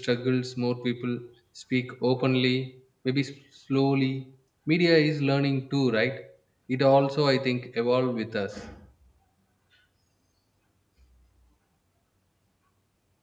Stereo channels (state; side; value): identical; both; correlation 1.00